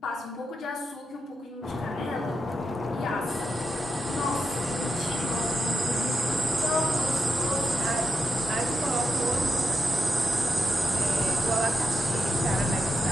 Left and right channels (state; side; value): normal; both; correlation 0.86